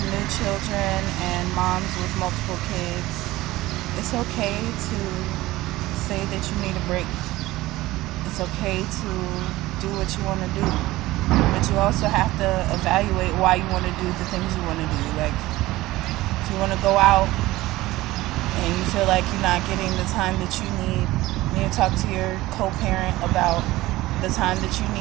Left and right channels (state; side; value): quieter; left; 17.9 dB